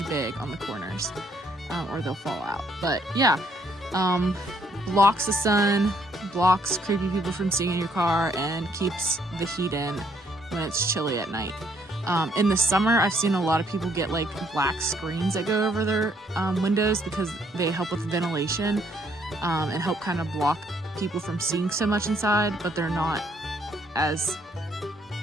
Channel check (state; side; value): normal; both; correlation 0.68